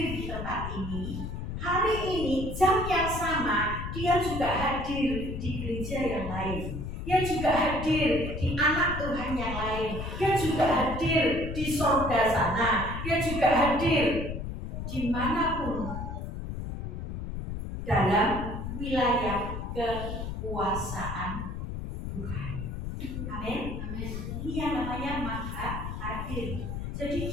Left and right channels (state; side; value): noise; left; rumble, 6 dB below the sound